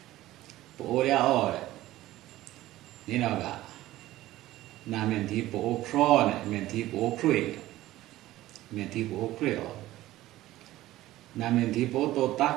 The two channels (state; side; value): quieter; left; 15.8 dB